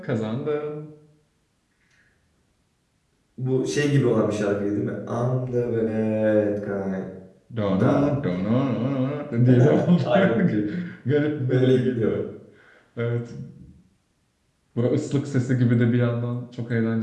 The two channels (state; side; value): identical; both; correlation 1.00